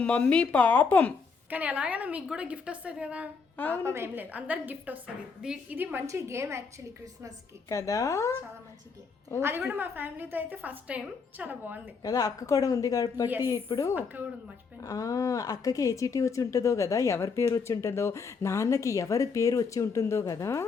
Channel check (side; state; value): right; quieter; 5.2 dB